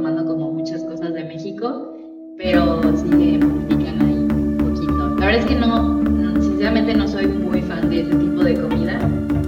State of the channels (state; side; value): identical; both; correlation 1.00